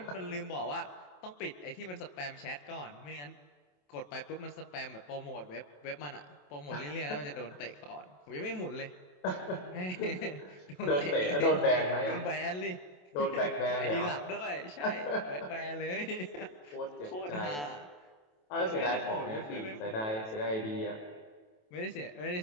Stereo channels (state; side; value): late; right; 27 ms